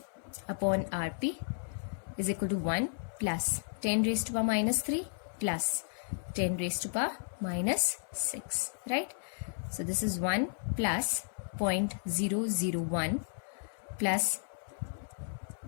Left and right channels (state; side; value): silent; right; 55 dB below the other